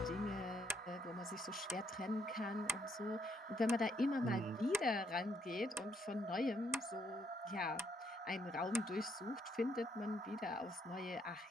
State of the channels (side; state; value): both; normal; correlation 0.73